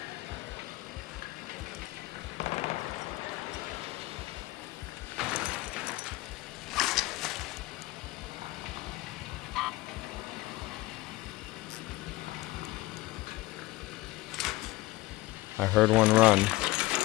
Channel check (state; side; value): quieter; right; 19.5 dB